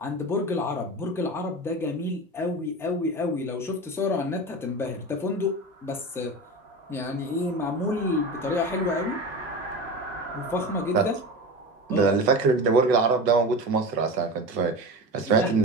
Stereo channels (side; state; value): both; normal; correlation 0.28